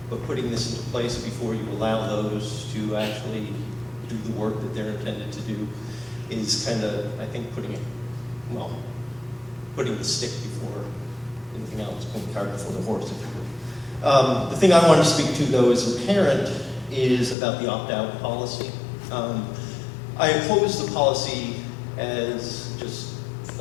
but putting this into place before you allow those to actually do the work that they're intended to do is kind of, I think, putting the stick before anything else, putting the cart before the horse, if you will. The thing I want to speak to, though, as a parent, is about the opt-out policy. I oppose the policy as just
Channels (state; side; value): drops out; right; at 17.4 s